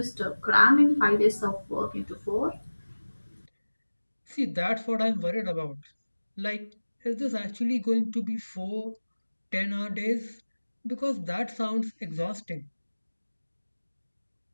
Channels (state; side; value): inverted; both; correlation -1.00